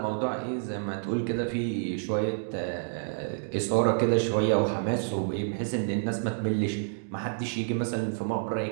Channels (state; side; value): silent; left; digital silence